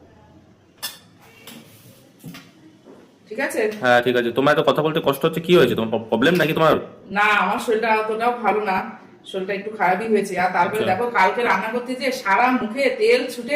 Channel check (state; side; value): identical; both; correlation 1.00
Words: ঠিক আছে। হ্যাঁ ঠিক আছে। তোমার তো কথা বলতে কষ্ট হচ্ছে, কি হয়েছে? তোমার প্রবলেম নাকি তোমার? না আমার শরীরটা অতটাও ভালো না, শরীরটা একটু খারাপই হয়েছে। আর তারপরে দেখো কালকে রান্না করতে যে সারা মুখে তেল ছুটে